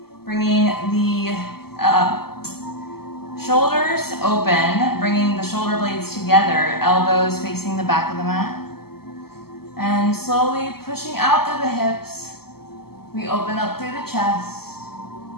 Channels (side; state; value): right; late; 0.95 ms